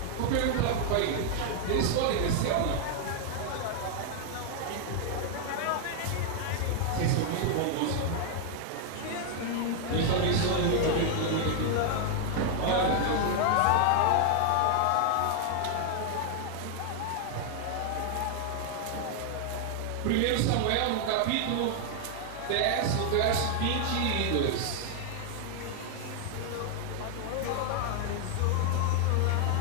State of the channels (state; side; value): different; both; correlation 0.00